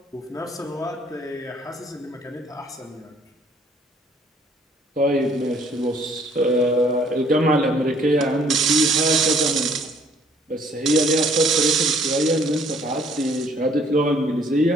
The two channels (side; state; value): both; normal; correlation 0.61